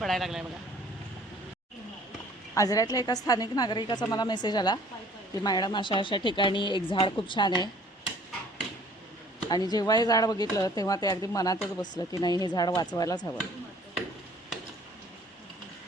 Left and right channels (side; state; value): both; normal; correlation 0.55